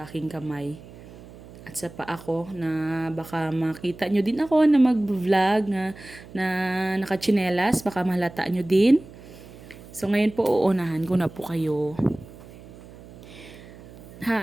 aking kamay at sa paa ko na baka makita nyo din ako na mag-vlog na nakachinelas. Baka mahalata nyo din. So, ngayon po uunahan ko na po kayo.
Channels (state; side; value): noise; right; hum, 19 dB below the sound